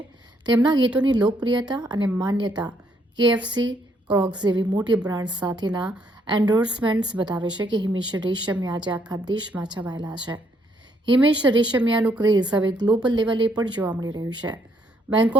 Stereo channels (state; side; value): normal; both; correlation 0.71